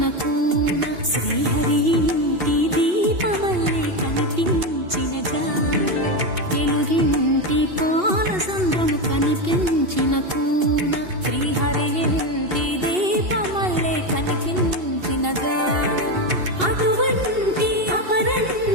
కూన శ్రీహరి ఇంటి దీపమల్లే కనిపించిన జాడ తెలుగింటి పాల సంద్రము కనిపించిన కూన శ్రీహరి ఇంటి దీపమల్లే కనిపించిన జాడ అటువంటి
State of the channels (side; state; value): left; late; 2.8 ms